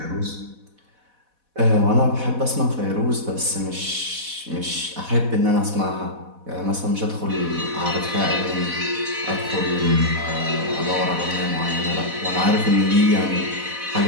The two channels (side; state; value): left; late; 4.1 ms